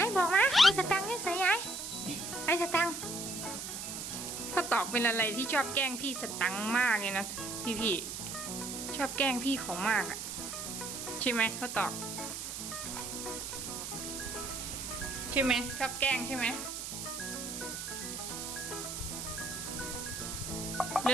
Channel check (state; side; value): noise; right; hiss, 6 dB below the sound